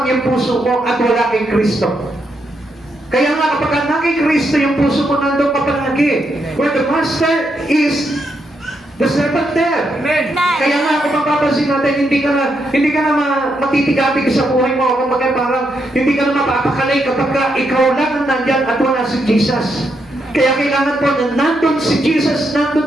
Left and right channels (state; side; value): normal; both; correlation 0.80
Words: yung puso mo at wala kay Kristo. Kaya nga, kapag na kay Kristo yung puso mo, nandun ka palagi. Where the master is, the servant there. Amen. Kaya nga, kung mapapansin natin, hindi ka na matitigatig sa buhay mo. Kung parang hindi ka na mapapakalay kapag ikaw lang ang nandyan at wala si Jesus. Kaya kailangan po na nandun si Jesus, nandun